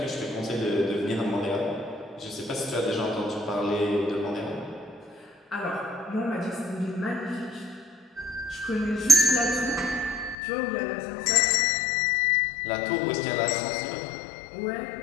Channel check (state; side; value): drops out; right; at 10.4 s